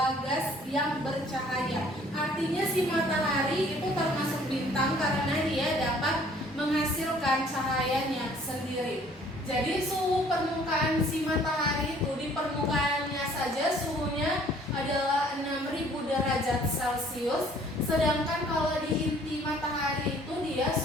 gas yang bercahaya. Artinya si matahari itu termasuk bintang karena dia dapat menghasilkan cahayanya sendiri. Jadi suhu permukaan si matahari itu di permukaannya saja suhunya adalah 6000 derajat Celcius. Sedangkan kalau di inti matahari itu dia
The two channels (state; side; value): normal; both; correlation 0.57